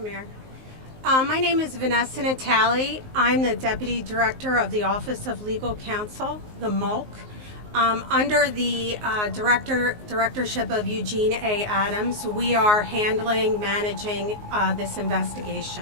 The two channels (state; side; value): late; left; 19 ms